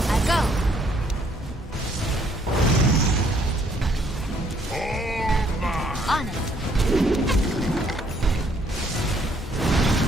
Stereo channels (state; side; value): normal; both; correlation 0.66